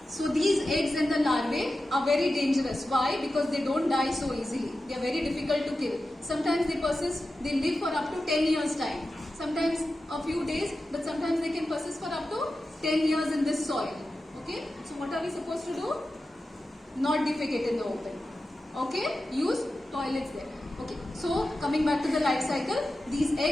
So these eggs and the larvae are very dangerous. Why? Because they don't die so easily. They are very difficult to kill. Sometimes they persist, they live for up to 10 years time. Sometimes a few days, but sometimes they can persist for up to 10 years in this soil. Okay? So what are we supposed to do? Not defecate in the open. Okay? Use toilets there. Okay. So coming back to the life cycle, these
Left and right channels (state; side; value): normal; both; correlation 0.92